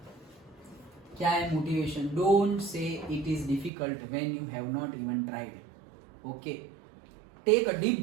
क्या है motivation? Don't say it is difficult when you have not even tried, okay, take a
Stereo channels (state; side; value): drops out; left; at 3.7 s